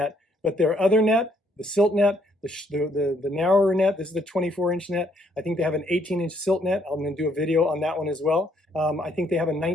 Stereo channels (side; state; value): both; normal; correlation 0.69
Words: but their other net, the silt net, the narrower net. This is the 24-inch net. I think they have an 18-inch silt net. I'm gonna do a video on that one as well. I think they have a